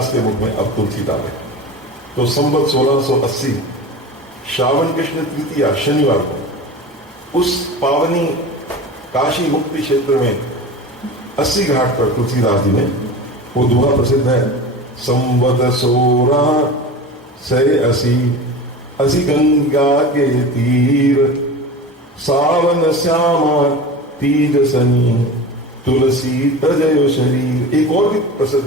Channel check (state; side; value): normal; both; correlation 0.32